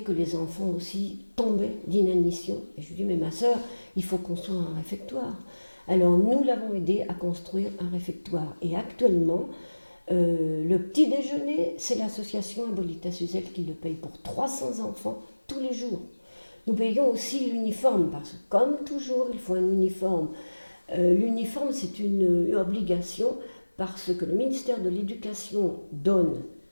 que les enfants aussi tombaient d'inanition. Et je lui dis, mais ma sœur, il faut construire un réfectoire. Alors nous l'avons aidé à construire un réfectoire. Et actuellement, le petit déjeuner, c'est l'association Abolita Suzelle qui le paye pour 300 enfants tous les jours. Nous payons aussi l'uniforme, parce que comme toujours, il faut un uniforme. L'uniforme, c'est une obligation parce que le ministère de l'Éducation donne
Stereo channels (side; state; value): both; inverted; correlation -1.00